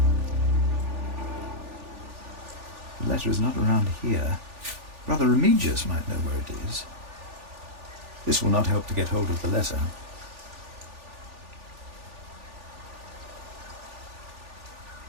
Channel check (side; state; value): left; late; 3.4 ms